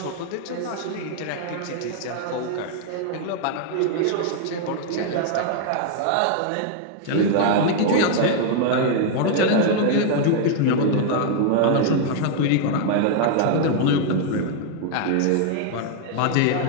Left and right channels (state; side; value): different; both; correlation 0.00